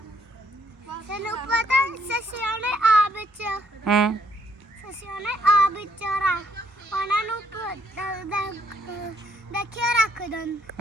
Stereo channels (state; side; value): normal; both; correlation 0.69